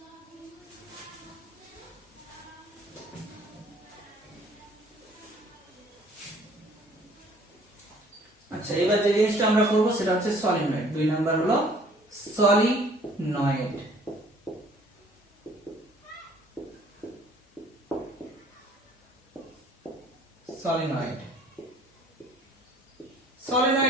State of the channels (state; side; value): normal; both; correlation 0.56